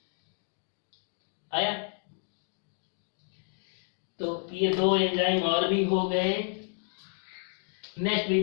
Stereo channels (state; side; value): silent; right; 56 dB below the other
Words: आया, तो ये दो एंजाइम और भी हो गए। Next we